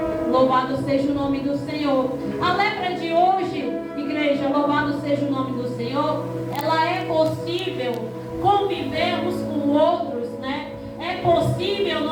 Louvado seja o nome do Senhor. A lepra de hoje, igreja, louvado seja o nome do Senhor, ela é possível convivermos com outros, né? É possível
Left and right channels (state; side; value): identical; both; correlation 1.00